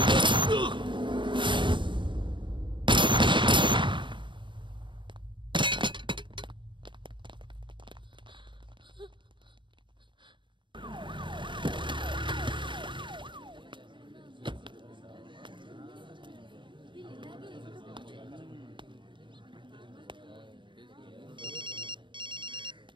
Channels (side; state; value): left; late; 0.23 ms